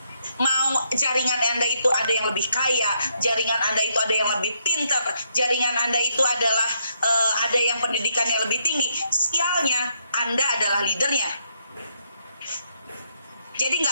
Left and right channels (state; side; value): inverted; both; correlation -0.75